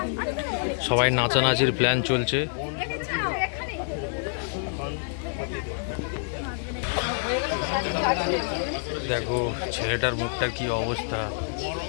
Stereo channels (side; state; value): right; silent; digital silence